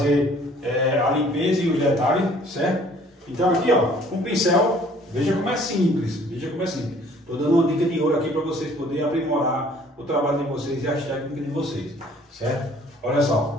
a limpeza e os detalhes, certo? Então aqui, ó, com o pincel, veja como é simples, veja como é simples. Estou dando uma dica de ouro aqui para vocês poderem aprimorar o trabalho de vocês e as técnicas de vocês, certo? Olha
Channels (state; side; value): normal; both; correlation 0.56